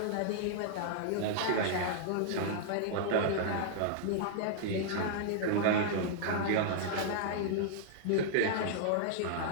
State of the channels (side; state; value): both; different; correlation -0.01